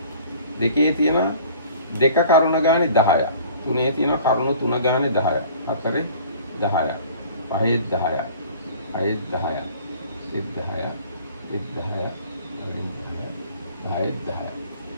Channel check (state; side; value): inverted; both; correlation -0.49